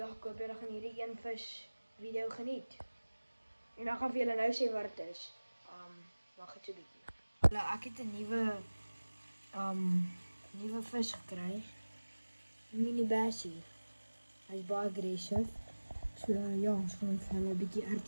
ek hoop julle gaan hierdie een vis video geniet. En dan gaan vir julle nou sê wat dit is. Wag net 'n bietjie. Ek het 'n nuwe vis gekry. Mini bassie. Hy is baie aggressief. So ja, ons gaan vir hulle 'n bietjie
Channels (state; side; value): inverted; both; correlation -1.00